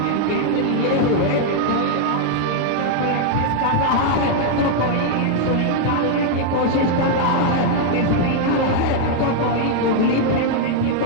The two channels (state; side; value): different; both; correlation 0.00